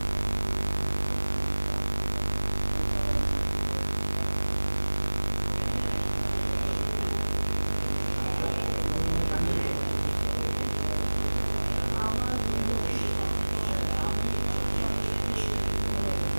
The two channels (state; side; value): inverted; both; correlation -1.00